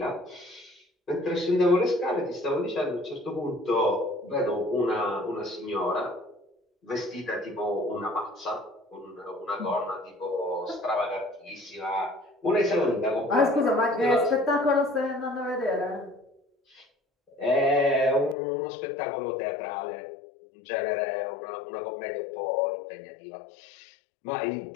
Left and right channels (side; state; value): right; drops out; at 18.4 s